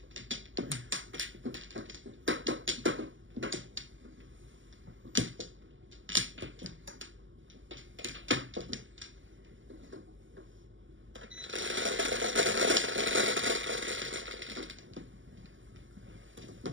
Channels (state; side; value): late; left; 0.56 ms